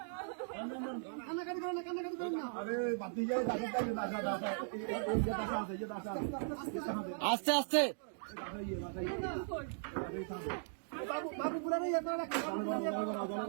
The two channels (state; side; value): silent; left; digital silence